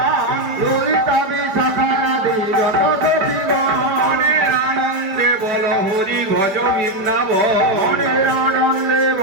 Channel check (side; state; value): left; late; 5.1 ms